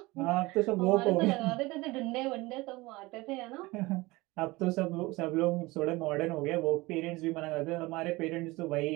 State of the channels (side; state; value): left; quieter; 21.7 dB